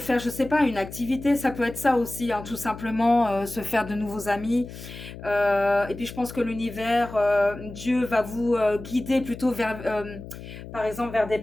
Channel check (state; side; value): noise; left; hum, 13 dB below the sound